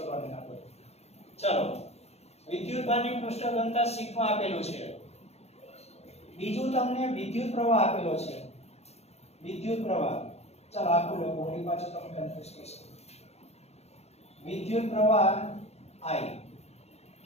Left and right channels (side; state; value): right; late; 0.31 ms